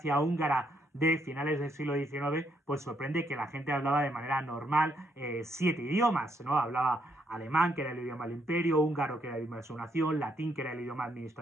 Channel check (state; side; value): normal; both; correlation 0.74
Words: húngara de finales del siglo XIX, pues sorprende que la gente hablaba de manera normal 7 idiomas, ¿no? Hablaba alemán, que era el idioma del imperio, húngaro, que era el idioma de su nación, latín, que era el idioma